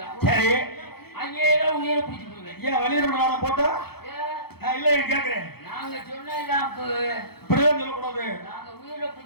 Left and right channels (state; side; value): late; right; 0.96 ms